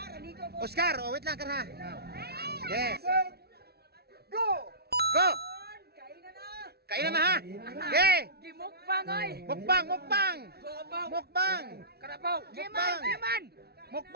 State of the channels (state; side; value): late; left; 0.46 ms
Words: Oscar, oh, wait lang, karha. Yes. Go! Go! Kainan na ha. Okay. Gimukbang oy. Mukbang, mukbang. Mukbang. Karabaw. Mukbang. Giman.